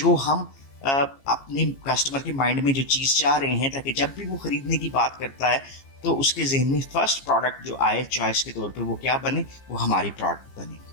हम अपने कस्टमर के माइंड में जो चीज़ चाह रहे हैं ताकि जब भी वो ख़रीदने की बात करता है तो उसके जहन में फर्स्ट प्रोडक्ट जो आए चॉइस के तौर पे वो क्या बने, वो हमारी प्रोडक्ट बने।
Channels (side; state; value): right; late; 15 ms